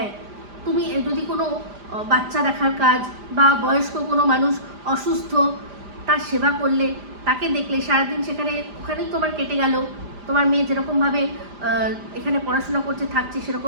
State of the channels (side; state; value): left; late; 5.0 ms